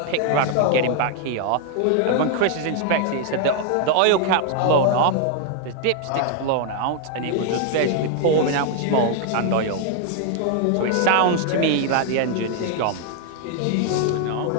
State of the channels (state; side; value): different; both; correlation 0.00